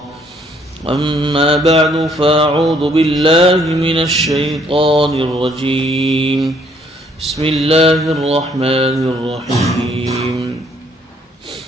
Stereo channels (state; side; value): normal; both; correlation 0.65